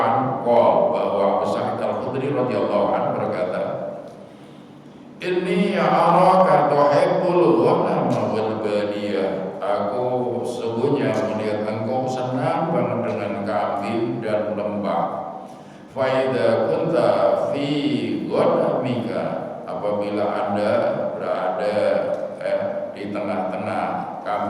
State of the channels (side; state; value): both; identical; correlation 1.00